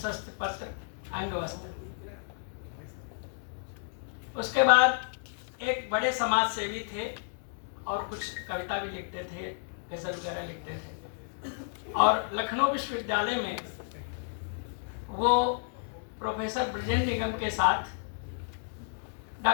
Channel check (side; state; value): right; silent; digital silence